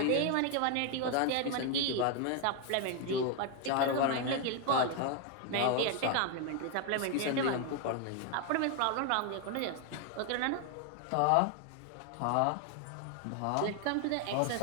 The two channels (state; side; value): different; both; correlation 0.01